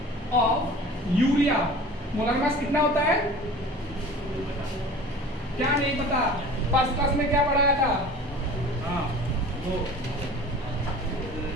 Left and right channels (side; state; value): both; normal; correlation 0.42